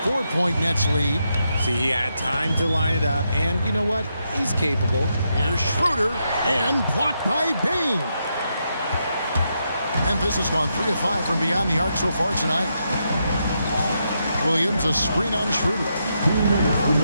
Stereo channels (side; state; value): both; inverted; correlation -0.82